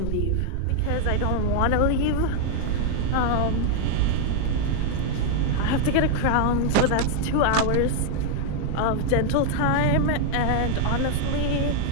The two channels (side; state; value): both; different; correlation 0.00